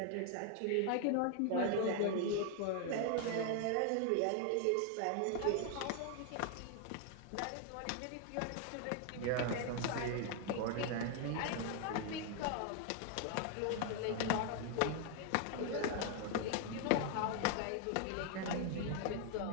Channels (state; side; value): different; both; correlation 0.00